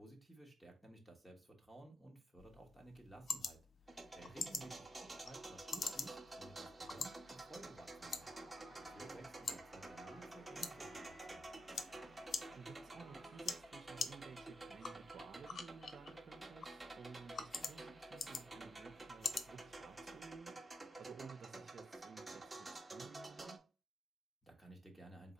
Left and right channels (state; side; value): normal; both; correlation 0.81